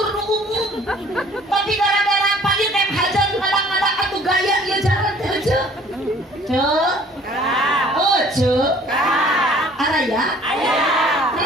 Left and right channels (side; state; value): both; normal; correlation 0.54